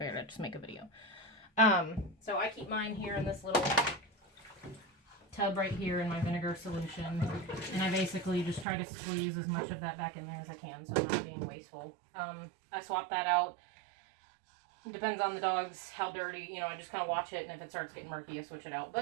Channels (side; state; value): left; drops out; at 8.7 s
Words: I'd just make a video. So I keep mine here in this little tub right here in my vinegar solution, and I basically just try to squeeze as much of that back in there as I can so I'm not being wasteful. I swap that out. It depends on the dogs, how dirty, you know, I just kind of watch it, and if it starts getting murky, I switch it out.